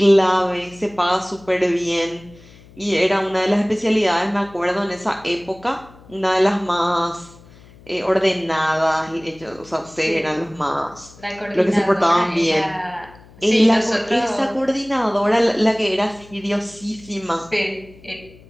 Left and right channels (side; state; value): left; noise; hum, 24 dB below the sound